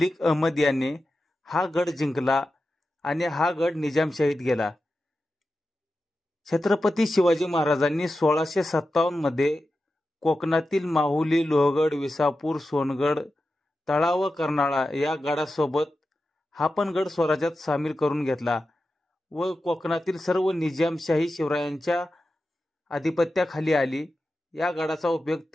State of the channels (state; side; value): normal; both; correlation 0.92